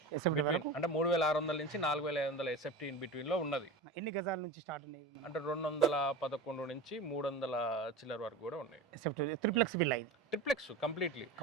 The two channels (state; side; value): quieter; left; 3.0 dB